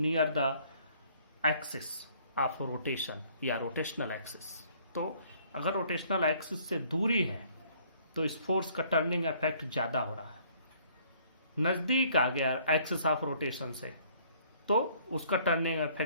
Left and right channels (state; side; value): inverted; both; correlation -0.60